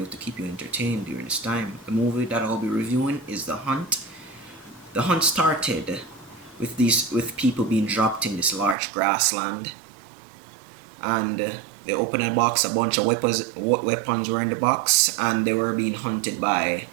to keep you entertained during this time. The movie that I'll be reviewing is The Hunt. The Hunt started with people being dropped in this large grassland, and they opened a box. A bunch of weapons were in the box, and they were being hunted by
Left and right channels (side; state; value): left; drops out; at 8.8 s